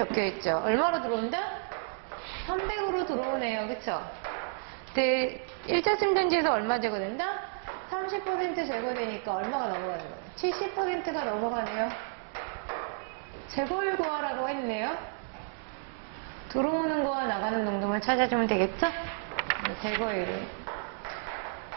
있죠. 얼마로 들어온다? 300으로 들어오네요. 그쵸? 근데 1차 침전지에서 얼마 제거된다? 30% 제거되니까 얼마가 넘어가는 거예요? 70%가 넘어가네요. 제거율 구하라고 했네요. 들어오는 거와 나가는 농도만 찾아주면 되겠죠? 제거율을.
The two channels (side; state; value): left; silent; digital silence